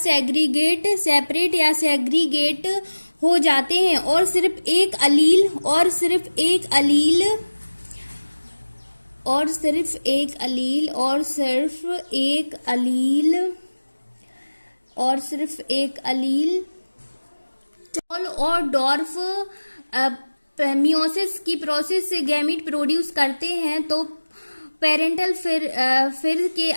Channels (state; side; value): inverted; both; correlation -1.00